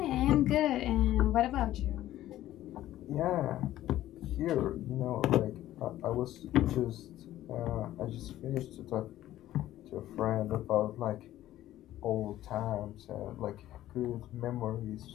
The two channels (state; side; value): quieter; right; 13.9 dB